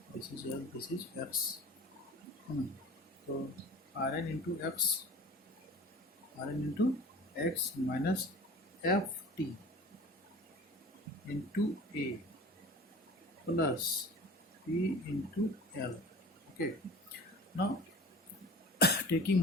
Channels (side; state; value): both; normal; correlation 0.41